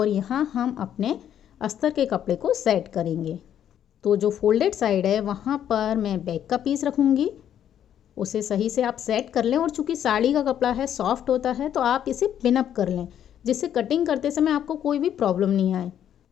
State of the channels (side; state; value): right; quieter; 10.0 dB